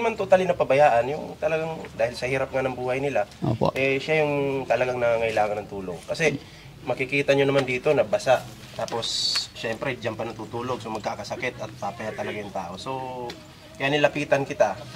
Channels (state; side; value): identical; both; correlation 1.00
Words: totally napabayaan, yung talagang dahil sa hirap nga ng buhay nila, Opo. siya yung talagang nangangailangan ng tulong. Kasi makikita nyo naman dito na basa, tapos siyempre diyan pa natutulog, so magkakasakit at papaya talaga yung tao. So, kaya nilapitan kita,